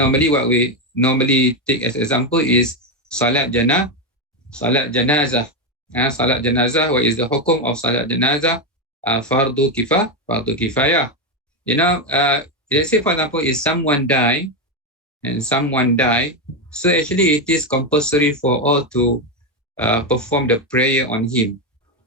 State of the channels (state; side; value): normal; both; correlation 0.09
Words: what we normally take as example is salat janazah. Salat janazah, what is the hukum of salat janazah? Fardu kifayah. Let's say for example, if someone die, so actually it is compulsory for all to perform the prayer on him.